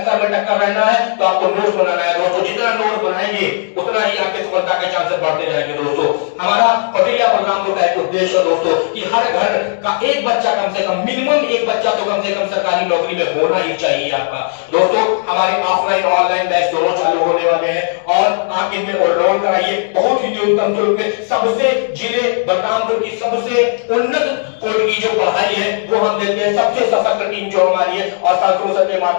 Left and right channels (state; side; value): silent; right; digital silence